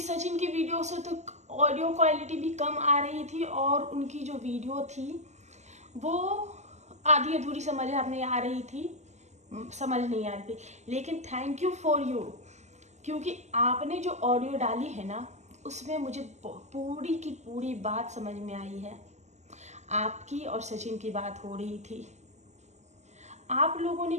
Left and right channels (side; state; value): left; late; 0.33 ms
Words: की वीडियो से तो ऑडियो क्वालिटी भी कम आ रही थी और उनकी जो वीडियो थी वो आधी अधूरी समझ में आ रही थी, समझ नहीं आ रही थी। लेकिन थैंक यू फॉर यू, क्योंकि आपने जो ऑडियो डाली है ना, उसमें मुझे पूरी की पूरी बात समझ में आई है। आपकी और सचिन की बात हो रही थी। आप लोगों ने